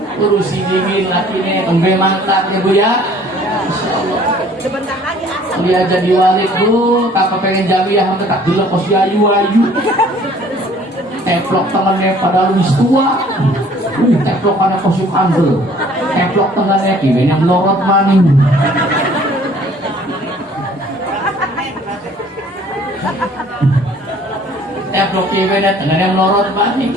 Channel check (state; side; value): normal; both; correlation 0.55